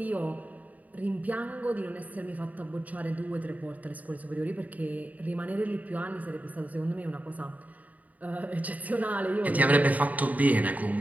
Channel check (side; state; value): left; late; 0.074 ms